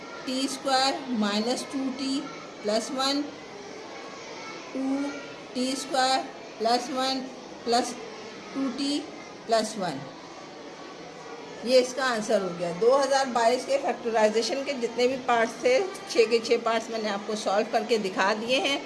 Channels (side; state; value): both; identical; correlation 1.00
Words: 2t + 1, 2t² + 1 + 2t + 1। ये इसका आंसर हो गया। 2022 के फैक्टराइजेशन के जितने भी पार्ट्स थे, 6 के 6 पार्ट्स मैंने आपको सॉल्व करके दिखा दिए हैं।